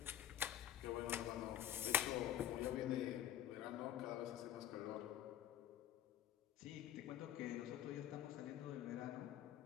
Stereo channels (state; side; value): quieter; right; 11.2 dB